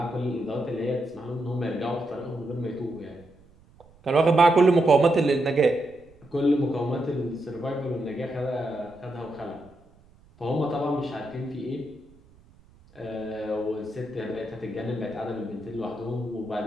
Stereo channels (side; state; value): right; noise; rumble, 27 dB below the sound